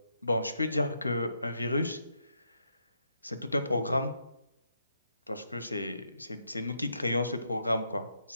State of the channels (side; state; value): both; inverted; correlation -0.79